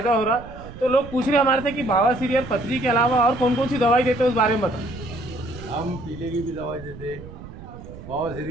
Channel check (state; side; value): noise; right; rumble, 15 dB below the sound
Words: हो रहा। तो लोग पूछ रहे हमारे से कि बवासीर और पथरी के अलावा और कौन कौन सी दवाई देते हैं, उस बारे में बताओ। हम पीले की भी दवाई देते, बवासीर